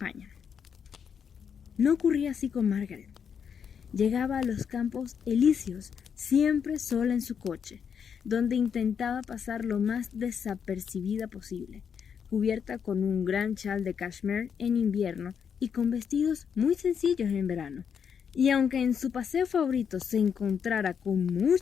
No ocurría así con Margaret. Llegaba a los campos elíseos siempre sola en su coche, donde intentaba pasar lo más desapercibida posible, cubierta con un gran chal de cashmere en invierno y con vestidos muy sencillos en verano. Y aunque en su paseo favorito se encontrara con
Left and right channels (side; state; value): right; quieter; 7.2 dB